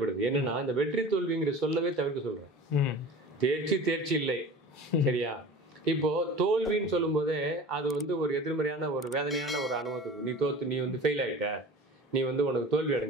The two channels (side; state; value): both; normal; correlation 0.38